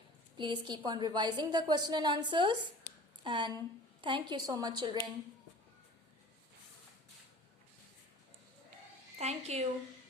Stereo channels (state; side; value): normal; both; correlation 0.44